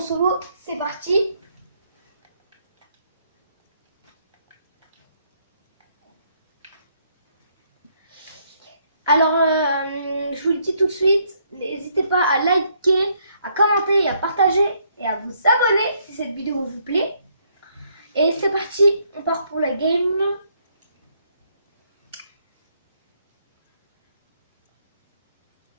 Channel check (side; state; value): both; inverted; correlation -0.70